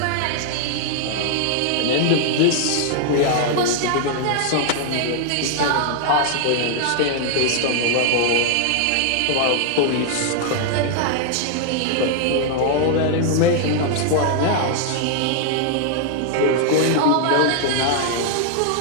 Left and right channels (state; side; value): different; both; correlation 0.00